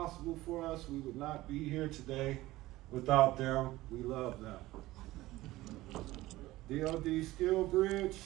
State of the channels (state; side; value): quieter; left; 17.7 dB